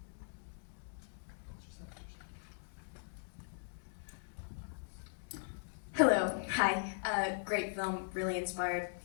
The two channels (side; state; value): right; silent; digital silence